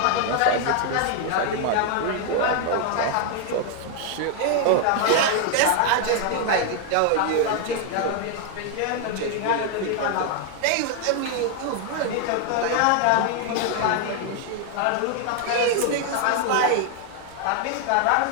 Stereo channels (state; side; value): different; both; correlation 0.00